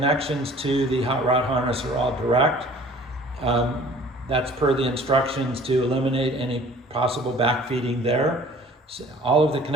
to the hot rod harness are all direct. That's per the instructions to eliminate any possible backfeeding there. So all of the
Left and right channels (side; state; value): both; normal; correlation 0.50